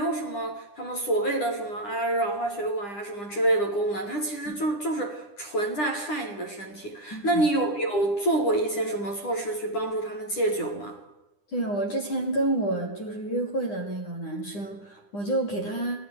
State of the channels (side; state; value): right; late; 9.9 ms